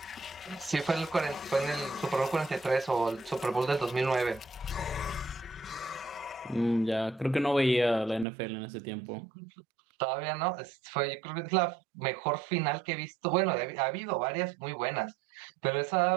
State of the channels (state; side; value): drops out; left; at 8.2 s